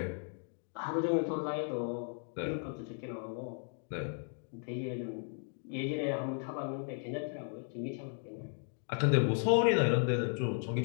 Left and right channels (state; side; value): silent; right; 54 dB below the other